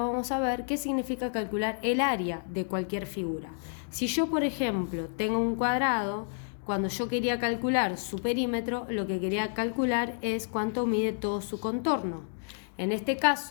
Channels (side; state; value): right; silent; digital silence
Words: vamos a ver qué significa calcular el área de cualquier figura. Si yo, por ejemplo, tengo un cuadrado, cuando yo quería calcular su perímetro, lo que quería calcular es cuánto mide todo su contorno. En este